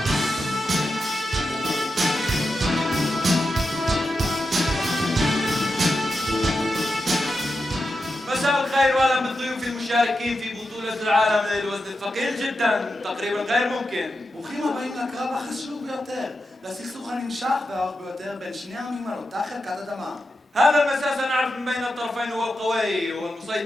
مساء الخير واهلا بالضيوف المشاركين في بطولة العالم للوزن الثقيل جدا تقريبا غير ممكن. ברוכים הבאים לקרב החשוב ביותר, לסכסוך הנמשך והארוך ביותר בין שני העמים על אותה חלקת אדמה. هذا المساء سنعرف من بين الطرفين هو القوي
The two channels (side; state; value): both; normal; correlation 0.89